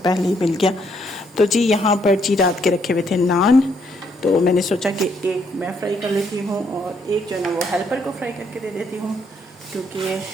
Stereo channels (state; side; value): normal; both; correlation 0.72